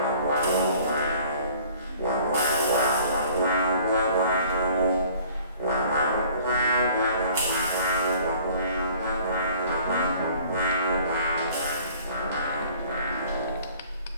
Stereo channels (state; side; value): inverted; both; correlation -0.52